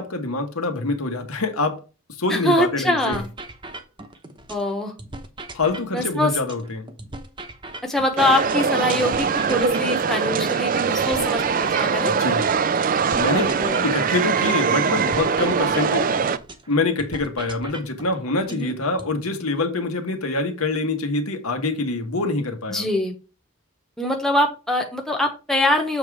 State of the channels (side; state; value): both; normal; correlation 0.15